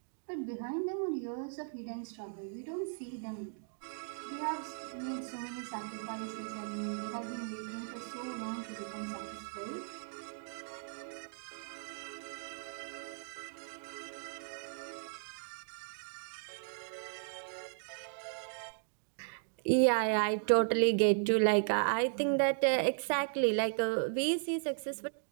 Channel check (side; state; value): left; silent; digital silence